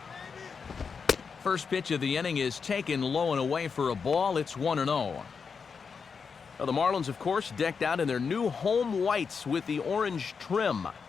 First pitch of the inning is taken low and away for a ball. It's 1-0. Now the Marlins, of course, decked out in their new home whites with the orange trim.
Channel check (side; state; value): right; quieter; 5.7 dB